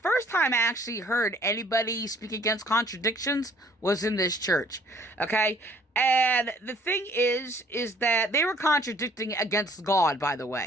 time I actually heard anybody speak against contradictions was in this church. Okay? And the thing is that they were contradicting against God, by the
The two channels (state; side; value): normal; both; correlation 0.59